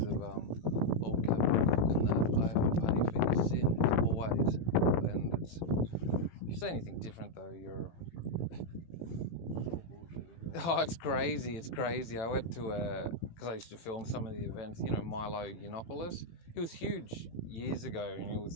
of old capital and that, I have to pay for your sins, always. And if you say anything different, though, you're... Oh, it's crazy. I went to because I used to film some of the events, Milo Yiannopoulos. He was huge years ago, and he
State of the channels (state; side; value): late; right; 18 ms